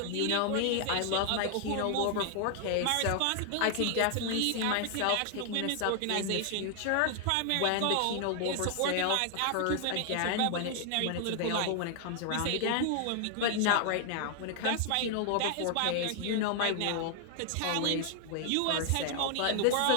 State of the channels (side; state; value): both; different; correlation 0.00